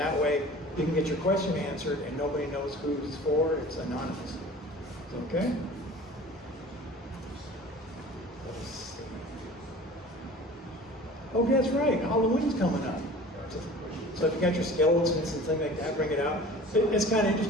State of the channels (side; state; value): both; normal; correlation 0.43